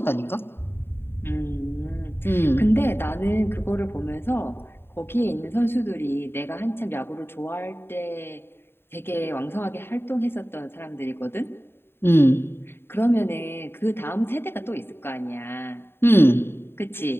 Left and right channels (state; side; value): late; right; 0.11 ms